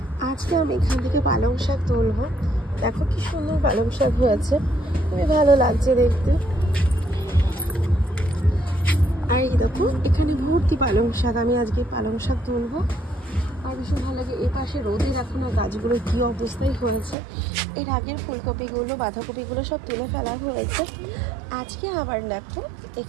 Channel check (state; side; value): drops out; left; at 17.2 s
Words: আজকে আমি এখান থেকে পালং শাক তুলবো। দেখো কি সুন্দর পালং শাক হয়েছে, খুবই ভালো লাগছে দেখতে। আর এই দেখো এখানে ভর্তি পালং শাক, আমি আজকে পালং শাক তুলবো। আর ভীষণ ভালো লাগে। এ পাশে রোদে দেখো না গাছগুলো কি অবস্থায় হয়েছে। এর আগের ফুলকপিগুলো বাঁধাকপিগুলো সব তুলে ফেলা হয়েছে। আজকে আবার দেখো